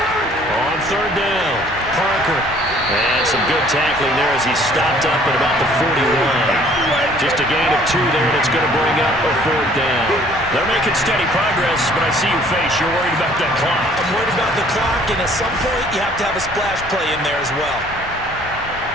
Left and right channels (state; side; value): normal; both; correlation 0.57